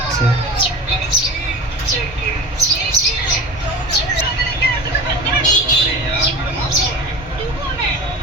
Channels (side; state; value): both; normal; correlation 0.34